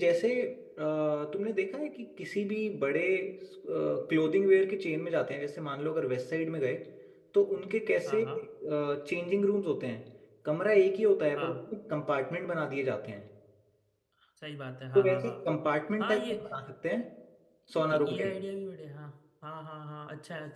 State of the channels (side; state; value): both; identical; correlation 1.00